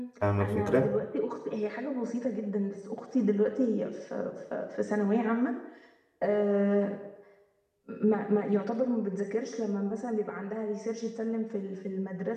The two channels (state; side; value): identical; both; correlation 1.00